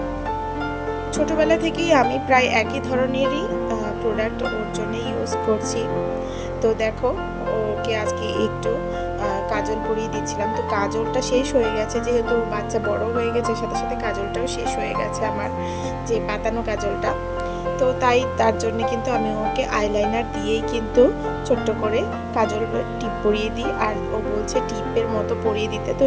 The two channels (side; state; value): both; identical; correlation 1.00